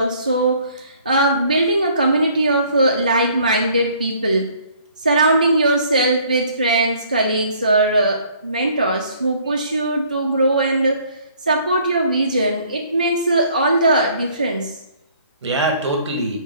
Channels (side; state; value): both; inverted; correlation -0.59